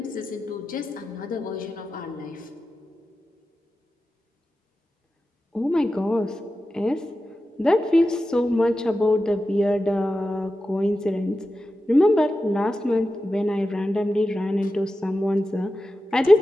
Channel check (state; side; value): normal; both; correlation 0.92